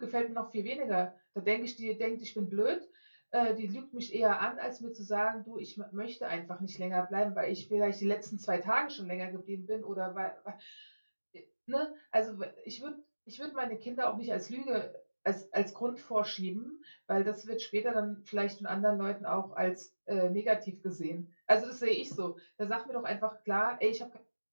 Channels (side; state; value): both; inverted; correlation -1.00